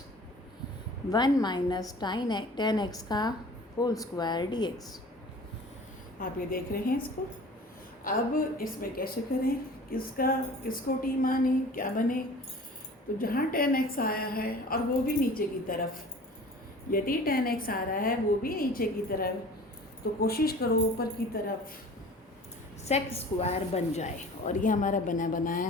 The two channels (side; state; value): both; normal; correlation 0.44